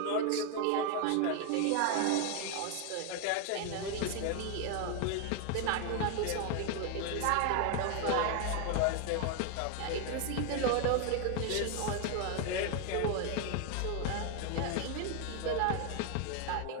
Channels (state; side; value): different; both; correlation 0.01